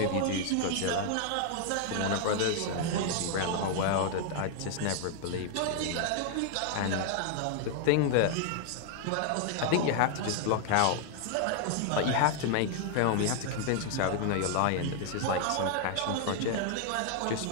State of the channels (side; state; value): both; different; correlation 0.00